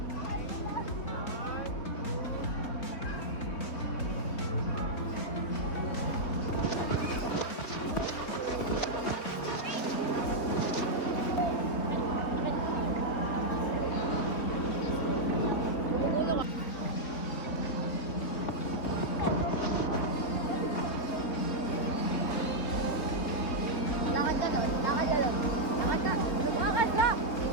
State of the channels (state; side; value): late; right; 3.6 ms